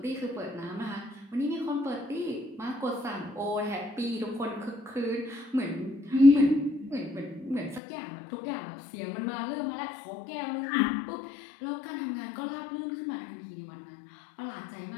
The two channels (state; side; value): drops out; right; at 7.8 s